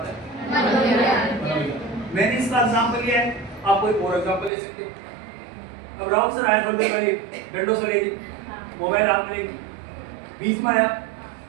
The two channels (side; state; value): left; drops out; at 4.5 s